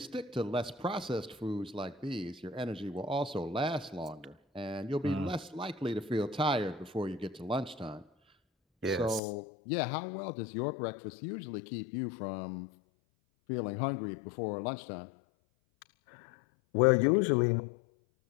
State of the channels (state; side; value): drops out; right; at 9.2 s